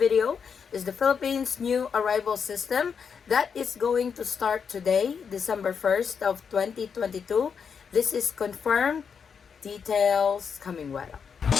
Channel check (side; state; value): right; quieter; 6.5 dB